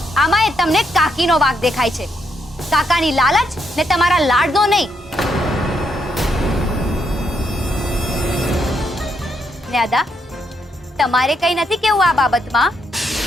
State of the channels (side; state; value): both; normal; correlation 0.77